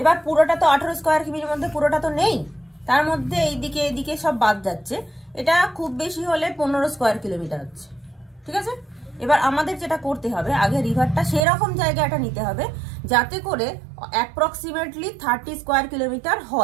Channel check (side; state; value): left; drops out; at 11.4 s